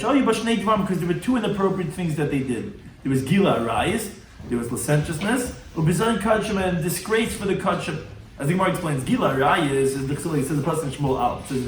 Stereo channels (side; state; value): both; identical; correlation 1.00